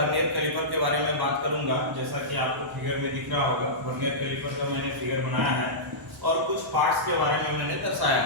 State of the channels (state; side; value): normal; both; correlation -0.16